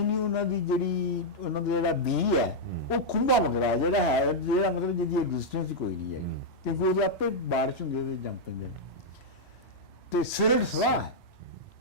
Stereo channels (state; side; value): normal; both; correlation -0.04